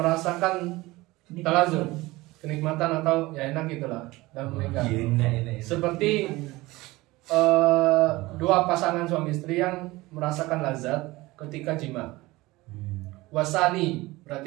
talazum, kenikmatan atau ya enak gitulah dalam menikah. Seperti dua pasangan suami istri yang merasakan lazat ketika jima. Wasani,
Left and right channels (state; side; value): quieter; left; 20.3 dB